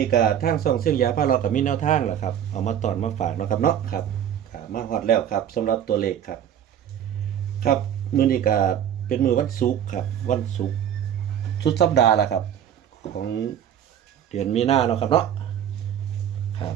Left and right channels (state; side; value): quieter; left; 9.7 dB